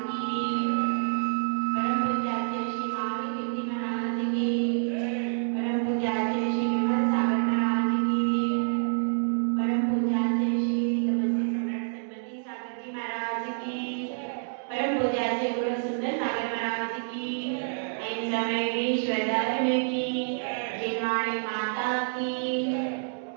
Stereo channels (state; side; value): silent; left; digital silence